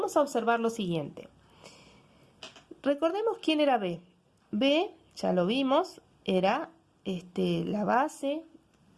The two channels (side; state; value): both; identical; correlation 1.00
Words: a observar lo siguiente. Recordemos quién era B. B, ya lo vimos, era la base